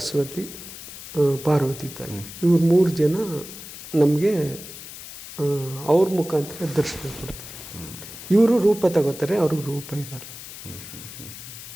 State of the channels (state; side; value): noise; left; hiss, 13 dB below the sound